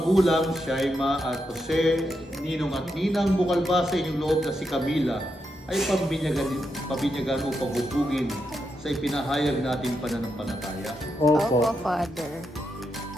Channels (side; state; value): both; normal; correlation 0.84